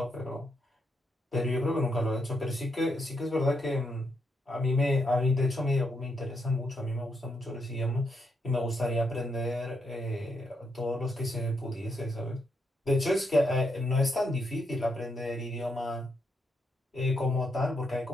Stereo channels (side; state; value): both; normal; correlation 0.79